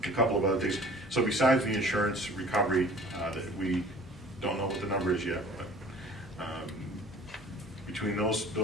a couple of other things. So besides the insurance recovery, that we don't know what the number is yet, but between those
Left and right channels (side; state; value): both; normal; correlation 0.48